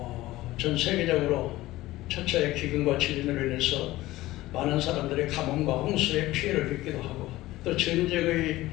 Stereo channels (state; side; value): quieter; right; 17.3 dB